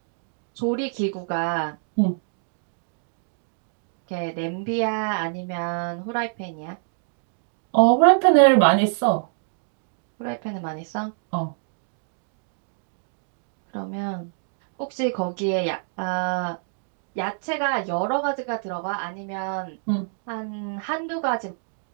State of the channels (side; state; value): left; silent; digital silence